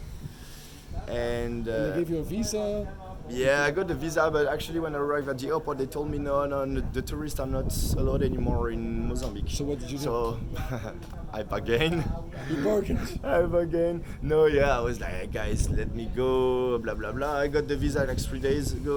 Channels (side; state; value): both; identical; correlation 1.00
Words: And They gave you a visa. yeah, I got the visa, but actually when I arrived at the airport, they told me no, the tourists are not allowed anymore in Mozambique. So what did you do? So I bargained. You bargained. I bargained. No, yeah, I was like, hey, guys, let me go, blah blah blah. I got the visa like 3 days